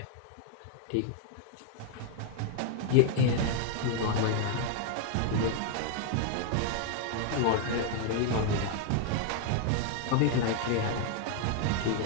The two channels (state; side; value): different; both; correlation 0.00